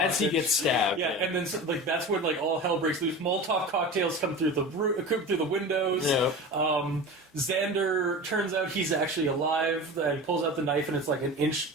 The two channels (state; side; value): normal; both; correlation 0.32